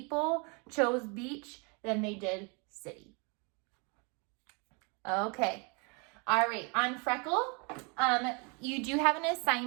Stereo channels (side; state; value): left; quieter; 33.2 dB